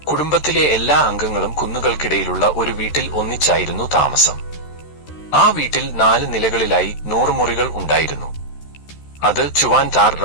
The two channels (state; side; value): late; right; 13 ms